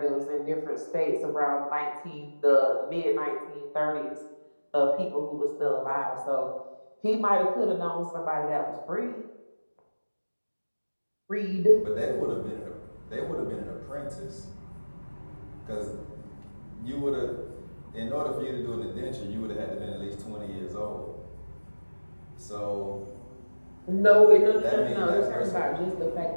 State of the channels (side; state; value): both; inverted; correlation -1.00